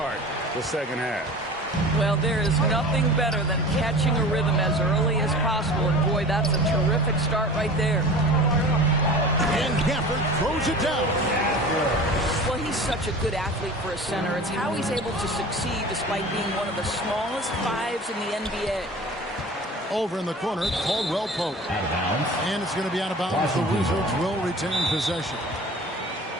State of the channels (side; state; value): both; normal; correlation 0.39